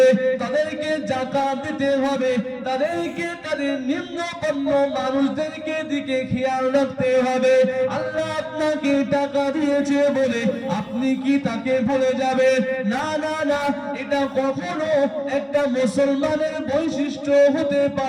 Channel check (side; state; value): both; identical; correlation 1.00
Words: তাদেরকে যাকাত দিতে হবে, তাদেরকে তাদের নিম্নবর্ণ মানুষদেরকে দিকে খেয়াল রাখতে হবে। আল্লাহ আপনাকে টাকা দিয়েছে বলে আপনি কি তাকে ভুলে যাবেন? না না না, এটা কখনো একটা মুসলমানের বৈশিষ্ট্য হতে